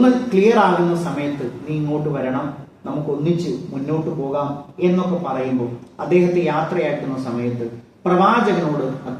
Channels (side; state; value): both; identical; correlation 1.00